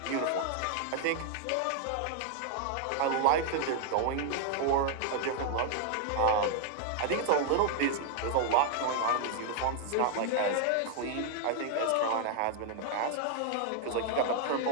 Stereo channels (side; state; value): both; different; correlation 0.00